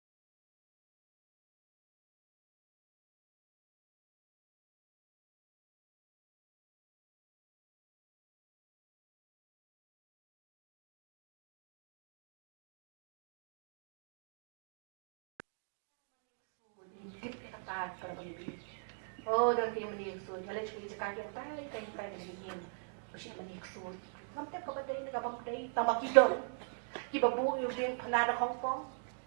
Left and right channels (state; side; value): silent; left; digital silence